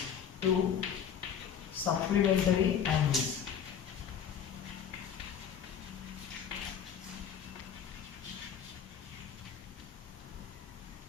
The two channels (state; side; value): quieter; right; 8.1 dB